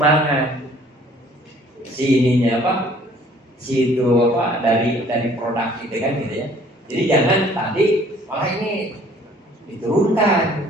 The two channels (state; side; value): normal; both; correlation 0.56